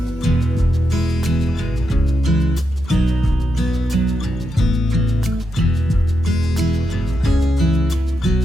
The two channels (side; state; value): both; normal; correlation 0.84